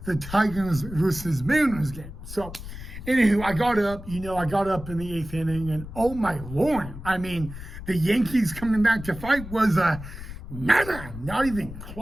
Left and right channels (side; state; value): left; noise; rumble, 12 dB below the sound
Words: the Tigers versus Mariners game. So, anywho, I got up in the 8th inning, and oh my Lord, the Yankees coming back to fight was not even